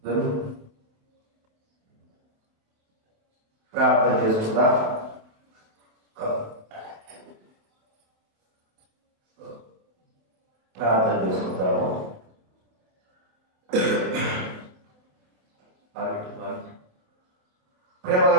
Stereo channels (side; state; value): left; late; 27 ms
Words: ప్రార్థన చేసుకుందా. ప్రార్థన చేసుకుంటాము.